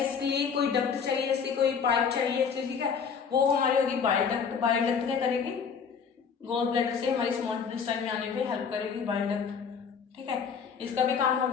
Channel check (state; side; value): quieter; right; 6.4 dB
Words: लिए कोई डक्ट चाहिए, इसलिए कोई पाइप चाहिए, इसलिए ठीक है, वो हमारी होगी बाइल डक्ट। बाइल डक्ट क्या करेगी? गोल ब्लैडर से हमारी स्मॉल इंटेस्टाइन में आने पे हेल्प करेगी बाइल डक्ट। ठीक है, इसका भी काम हो